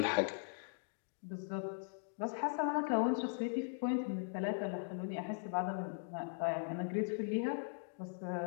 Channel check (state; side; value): silent; right; digital silence